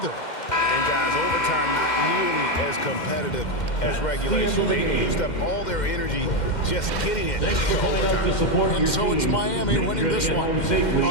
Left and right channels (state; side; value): late; right; 2.1 ms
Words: And guys, overtime not nearly as competitive as regulation. They used up all their energy just getting it to overtime. And so it's Miami winning this one.